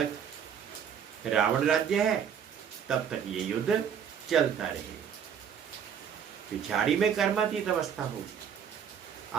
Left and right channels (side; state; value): left; quieter; 8.1 dB